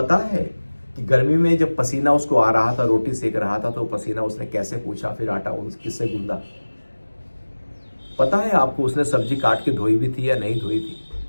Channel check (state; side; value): inverted; both; correlation -1.00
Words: है कि गर्मी में जब पसीना उसको आ रहा था, रोटी सेक रहा था, तो पसीना उसने कैसे पूछा, फिर आटा किससे गूंदा? पता है आपको उसने सब्जी काट के धोई भी थी या नहीं धोई थी?